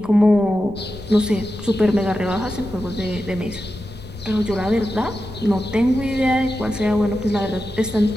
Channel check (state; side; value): noise; left; rumble, 17 dB below the sound